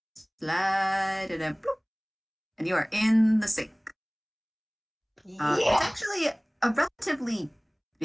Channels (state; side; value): identical; both; correlation 1.00